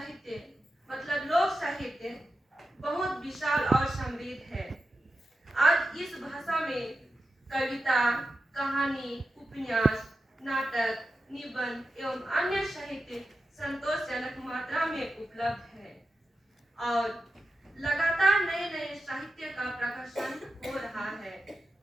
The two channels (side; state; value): both; normal; correlation 0.90